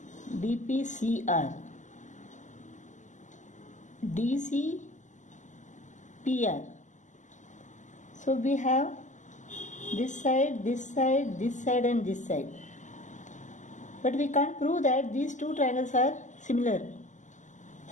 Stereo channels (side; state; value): right; late; 0.36 ms